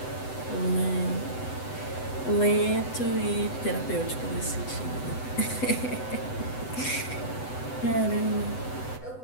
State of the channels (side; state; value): right; late; 8.0 ms